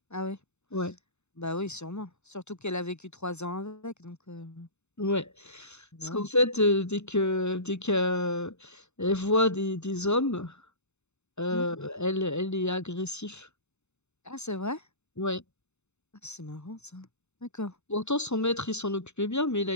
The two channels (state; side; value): late; right; 0.82 ms